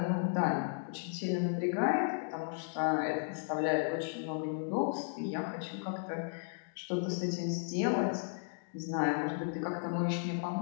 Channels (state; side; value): silent; right; digital silence